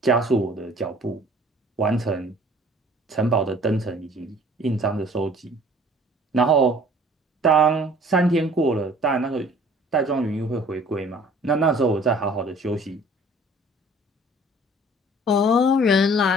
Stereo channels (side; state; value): both; normal; correlation 0.52